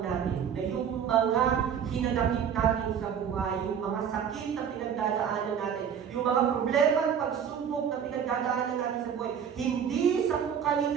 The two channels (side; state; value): left; quieter; 8.0 dB